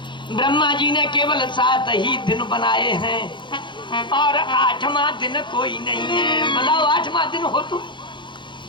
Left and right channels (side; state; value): right; late; 0.23 ms